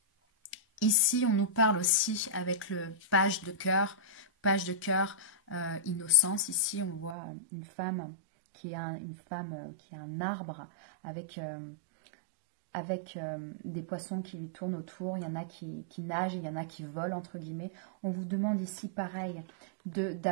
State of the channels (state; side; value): drops out; left; at 7.2 s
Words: Ici, on nous parle aussi avec le page de cœur, innocence. Ici, on voit une femme qui est un arbre avec des poissons qui lui tournent autour. Il y en a qui nagent, il y en a qui volent, entre guillemets. On vous demande ici, pareil,